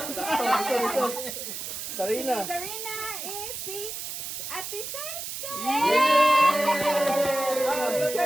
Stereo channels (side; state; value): right; noise; hiss, 6 dB below the sound